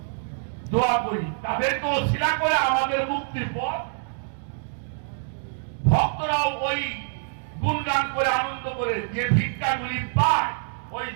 দোয়া করি, তাদেরকে ওসিলা করে আমাদের মুক্তির পথ। ভক্তরাও ওই গুণগান করে আনন্দ করে যে ভিক্ষাগুলি পায়, ওই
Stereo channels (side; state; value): left; silent; digital silence